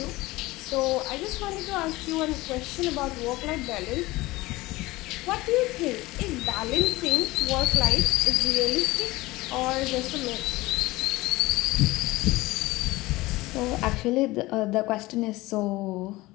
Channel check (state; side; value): quieter; right; 19.9 dB